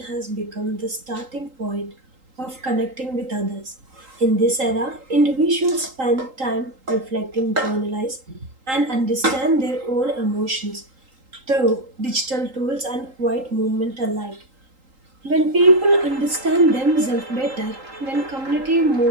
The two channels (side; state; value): left; late; 3.8 ms